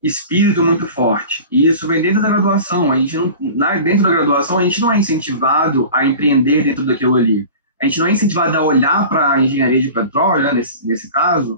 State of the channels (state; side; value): inverted; both; correlation -0.38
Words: espírito muito forte. E isso vem dentro da graduação. Dentro da graduação, a gente não é incentivado a empreender dentro daquilo ali. A gente não é incentivado a olhar para a engenharia de petróleo, né, nesse